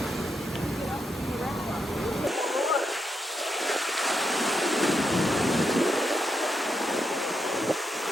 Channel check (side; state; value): both; normal; correlation 0.82